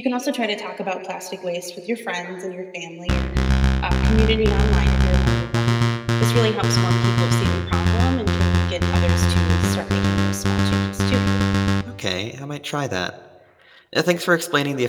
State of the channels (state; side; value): identical; both; correlation 1.00